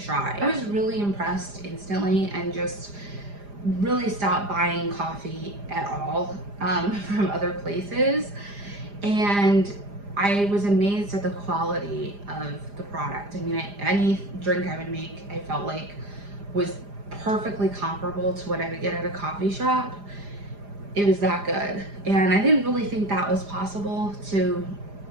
I was really impressed instantly and just really stopped buying coffee at all from other places. And I was amazed at the quality of the product. I mean, any drink I would make, I felt like was perfectly comparable to what I would get at a coffee shop. It was that good. And I didn't really think that was possible to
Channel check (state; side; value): late; left; 4.9 ms